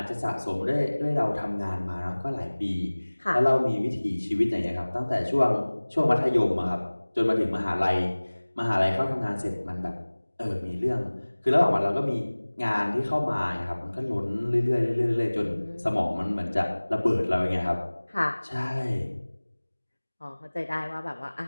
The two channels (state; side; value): inverted; both; correlation -1.00